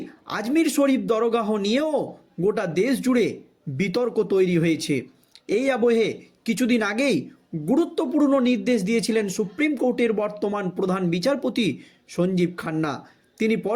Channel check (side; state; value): both; identical; correlation 1.00